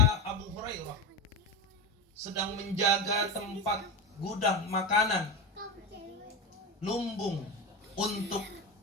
Abu Hurairah sedang menjaga tempat gudang makanan lumbung untuk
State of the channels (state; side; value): normal; both; correlation 0.19